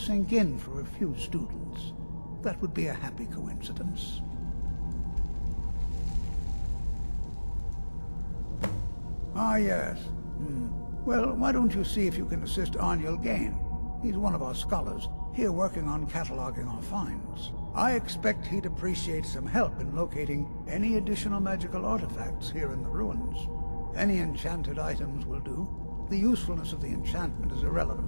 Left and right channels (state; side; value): inverted; both; correlation -1.00